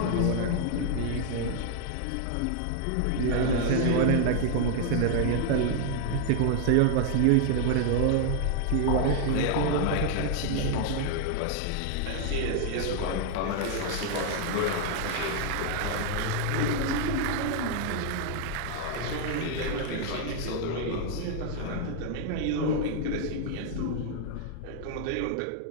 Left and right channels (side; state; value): both; different; correlation 0.00